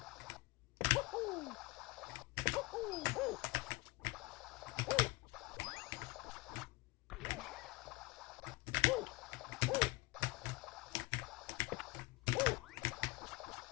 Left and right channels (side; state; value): right; quieter; 22.3 dB